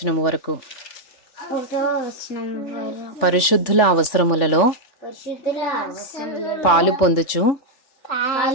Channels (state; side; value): late; right; 3.4 ms